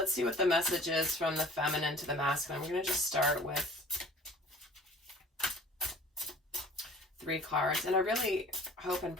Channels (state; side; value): normal; both; correlation 0.47